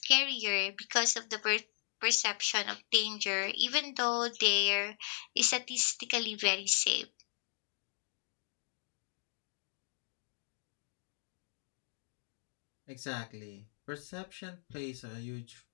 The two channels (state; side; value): silent; right; digital silence